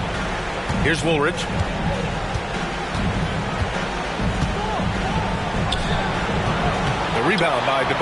Here's Woolridge. The rebound by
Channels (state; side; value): identical; both; correlation 1.00